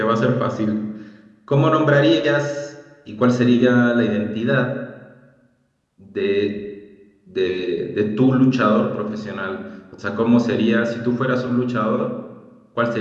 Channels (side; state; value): both; identical; correlation 1.00